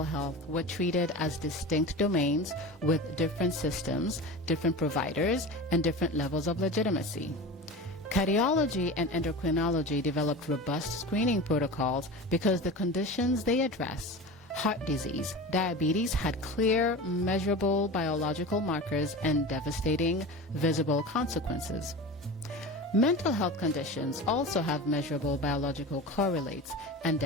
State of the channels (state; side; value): normal; both; correlation 0.31